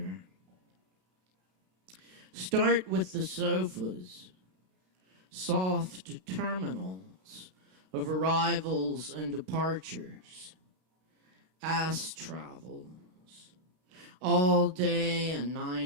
Start with the sofas, soft terminals of arrivals and departures, ass travels, all day and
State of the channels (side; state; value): left; late; 32 ms